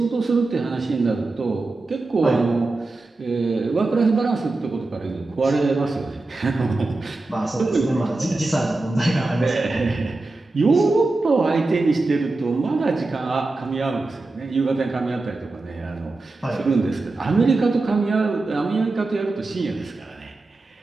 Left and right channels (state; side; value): quieter; left; 3.2 dB